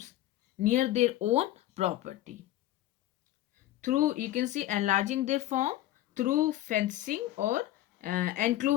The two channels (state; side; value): quieter; right; 14.3 dB